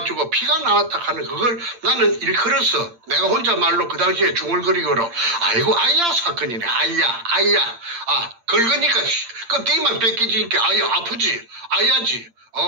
피가 나왔다 하는 그걸 나는 일컬어서 내가 혼자 말로 그 당시에 중얼거리고로 아이고 아야 사건이네 아야 긁으니까 껍데기만 뺏기지니까 아야 아프지 아야지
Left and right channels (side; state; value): left; late; 8.7 ms